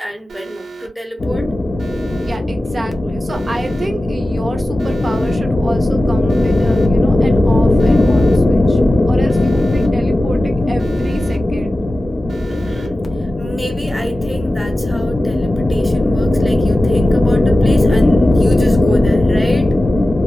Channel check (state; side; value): normal; both; correlation 0.95